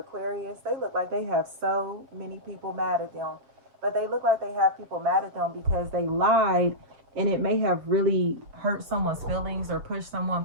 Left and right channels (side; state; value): left; late; 7.3 ms